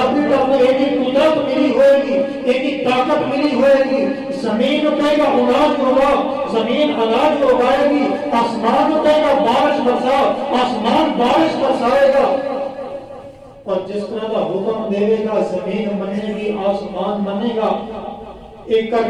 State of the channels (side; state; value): both; identical; correlation 1.00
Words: کی طرف ایک ہی قدرت ملی ہوئے گی، ایک ہی طاقت ملی ہوئے گی، زمین کہے گا اناج ہوگا، زمین اناج اگائے گی، آسمان کہے گا بارش برسا، آسمان بارش برسائے گا، اور جس طرح کا حکم دے گا زمین منے گی، آسمان منے گا، ایک